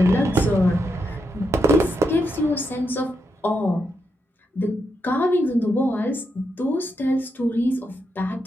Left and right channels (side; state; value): both; normal; correlation 0.83